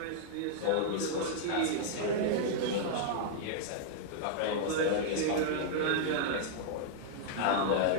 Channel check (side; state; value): both; different; correlation -0.01